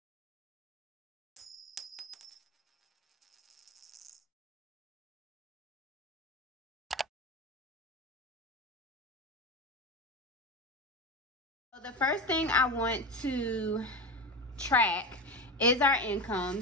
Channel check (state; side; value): normal; both; correlation 0.22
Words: So the first thing I want to track is our